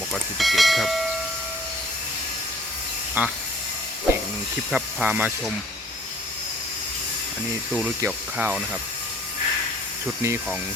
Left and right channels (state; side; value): normal; both; correlation 0.52